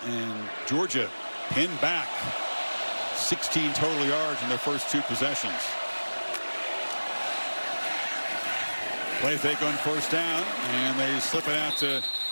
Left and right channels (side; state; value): both; inverted; correlation -1.00